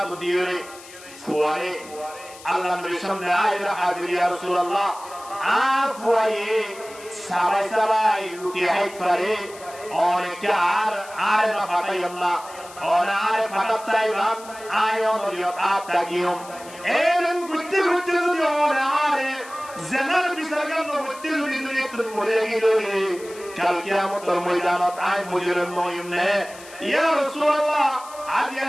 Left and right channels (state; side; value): noise; left; hiss, 19 dB below the sound